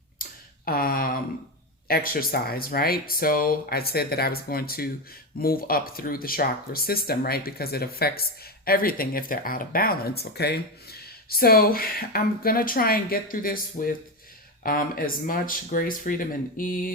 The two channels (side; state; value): both; normal; correlation 0.14